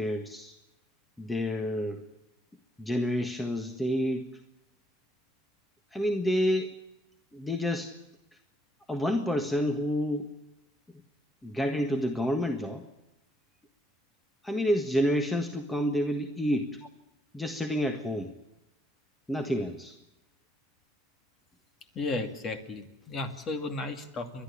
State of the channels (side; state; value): both; normal; correlation 0.73